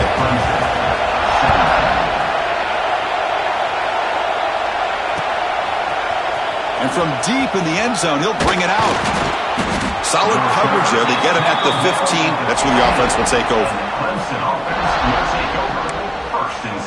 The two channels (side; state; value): both; identical; correlation 1.00